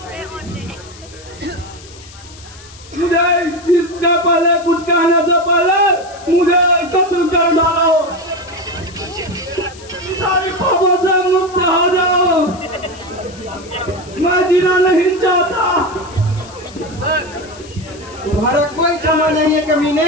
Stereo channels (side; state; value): left; noise; hiss, 20 dB below the sound